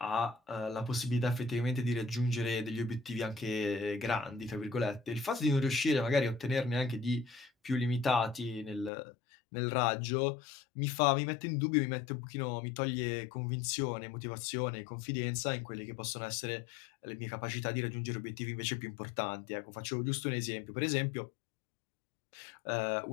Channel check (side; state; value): right; drops out; at 8.9 s